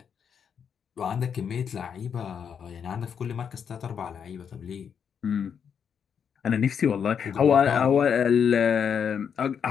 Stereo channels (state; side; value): quieter; right; 7.4 dB